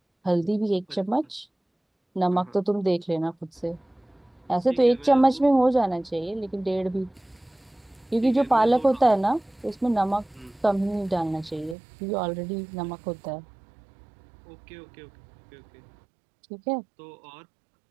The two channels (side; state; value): left; drops out; at 11.8 s